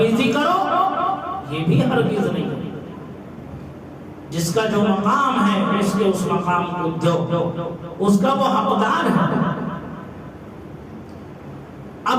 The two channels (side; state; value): both; identical; correlation 1.00